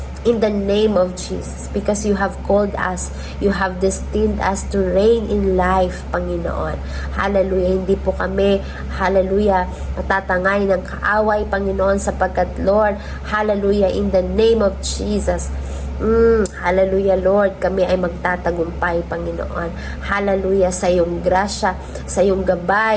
In the name of Jesus, because you have called us, you have destined us to reign in life, Panginoon. Hallelujah, hindi po kami, hallelujah, matatangay ng kaaway, Panginoon, sapagkat, Lord, hallelujah, in the name of Jesus, hallelujah, Lord, kami ay magtatagumpay, Panginoon. Hallelujah, sa iyong grasya, sa iyong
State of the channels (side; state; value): both; identical; correlation 1.00